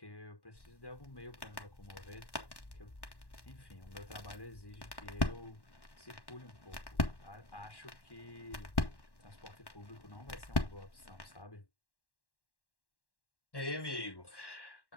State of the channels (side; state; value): right; late; 1.1 ms